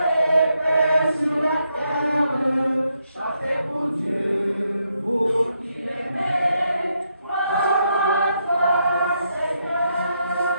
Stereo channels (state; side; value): inverted; both; correlation -0.79